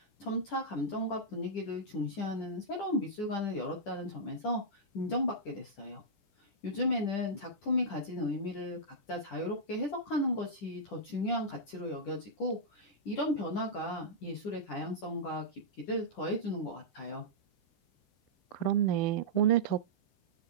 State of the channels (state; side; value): late; right; 10 ms